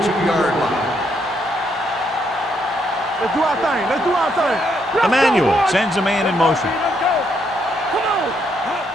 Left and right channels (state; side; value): normal; both; correlation 0.75